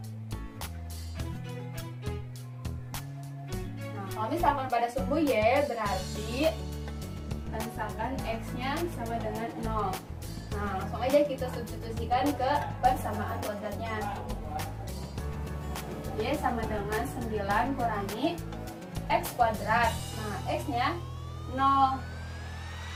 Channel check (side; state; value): both; identical; correlation 1.00